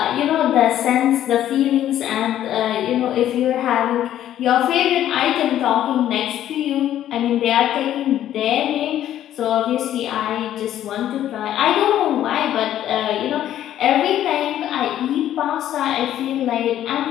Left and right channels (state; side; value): quieter; right; 11.8 dB